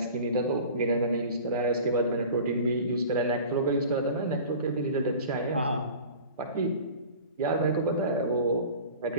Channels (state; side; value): inverted; both; correlation -0.40